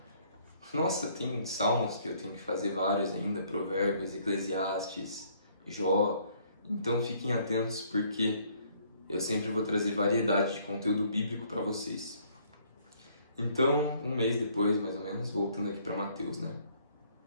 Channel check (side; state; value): both; inverted; correlation -0.63